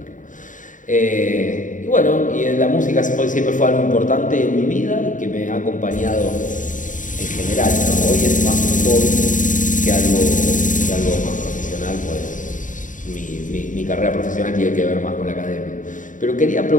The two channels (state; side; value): late; right; 0.37 ms